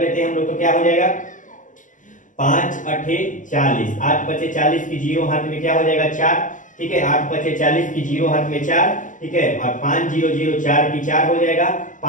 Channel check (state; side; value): late; right; 0.37 ms